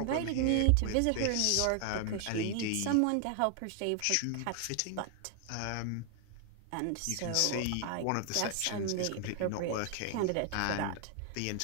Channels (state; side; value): different; both; correlation 0.00